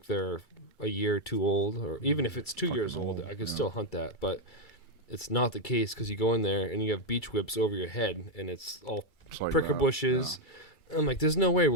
they're a year or two old, or even if it's 2 years old, I could still hunt that, but it's not the case because you go in there and you have beach whips over your head and it's all like pricker bushes. Yeah. I'm like, there's no way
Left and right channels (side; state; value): right; late; 2.3 ms